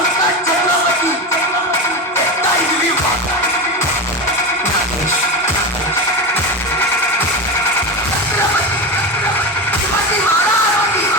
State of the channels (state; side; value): normal; both; correlation 0.20